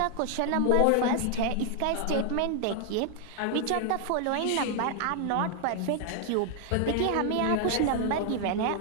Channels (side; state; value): both; different; correlation 0.00